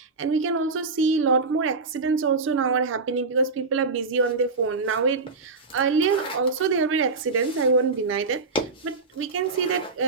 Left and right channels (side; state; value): left; quieter; 4.1 dB